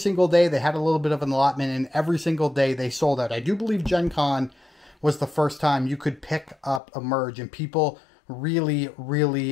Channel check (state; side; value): drops out; right; at 6.8 s